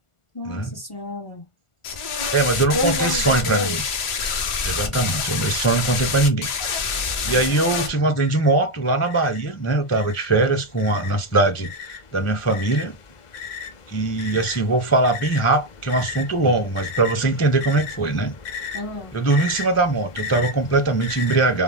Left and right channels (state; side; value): late; right; 1.4 ms